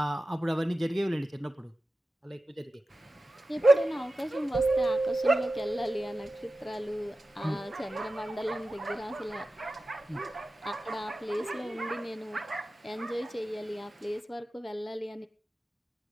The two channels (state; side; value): normal; both; correlation 0.94